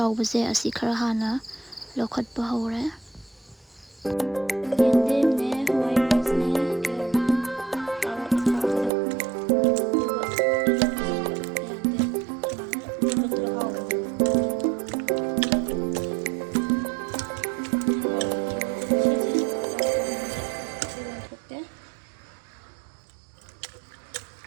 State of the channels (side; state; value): left; drops out; at 8.9 s